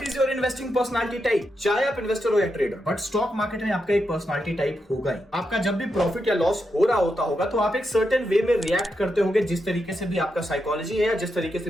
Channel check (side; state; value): both; normal; correlation 0.85